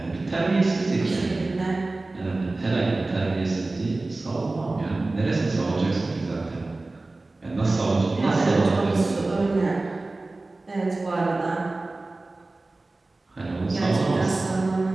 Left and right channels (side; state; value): left; quieter; 3.1 dB